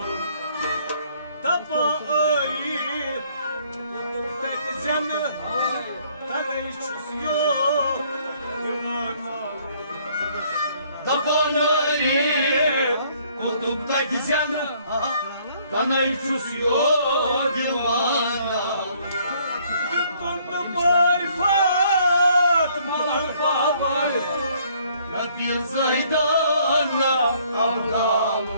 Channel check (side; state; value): both; inverted; correlation -0.63